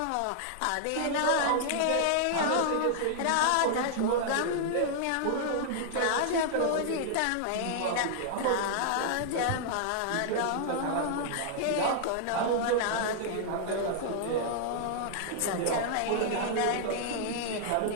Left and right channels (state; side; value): different; both; correlation -0.01